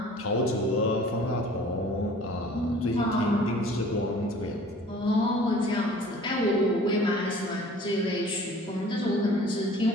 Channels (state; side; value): normal; both; correlation 0.49